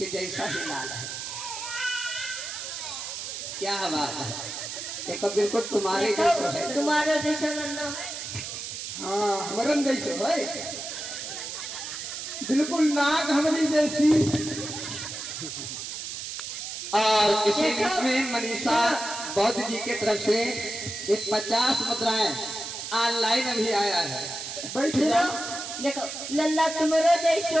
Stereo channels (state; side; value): noise; right; hiss, 7 dB below the sound